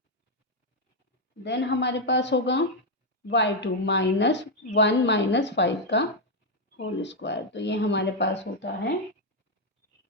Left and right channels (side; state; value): both; normal; correlation 0.02